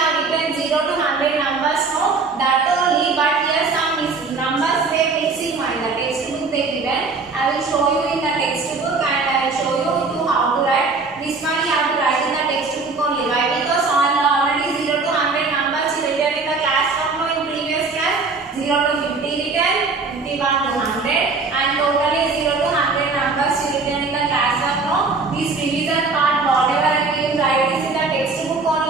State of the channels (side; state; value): left; quieter; 4.1 dB